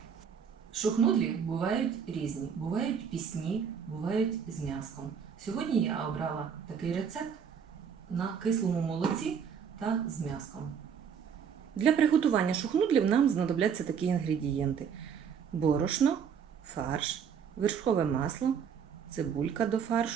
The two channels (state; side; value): quieter; left; 7.2 dB